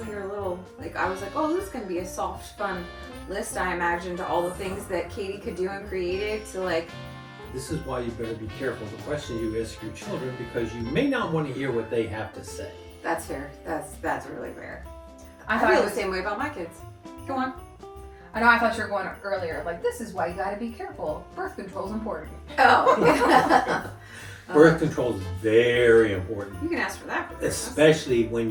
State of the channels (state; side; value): identical; both; correlation 1.00